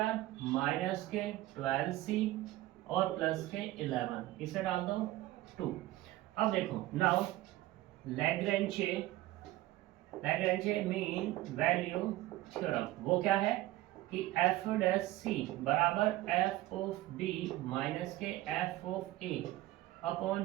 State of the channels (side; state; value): left; quieter; 16.4 dB